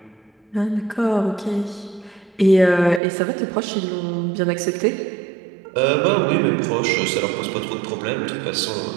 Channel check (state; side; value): drops out; left; at 3.0 s